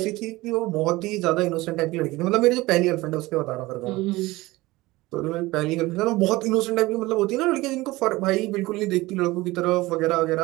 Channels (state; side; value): quieter; left; 19.8 dB